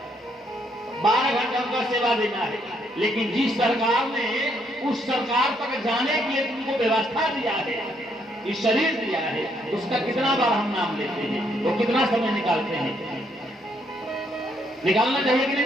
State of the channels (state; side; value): normal; both; correlation 0.72